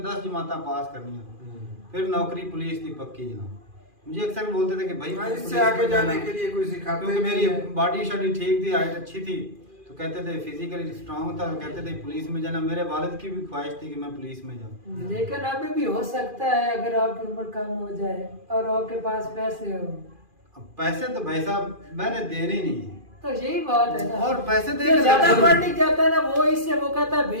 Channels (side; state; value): left; late; 2.4 ms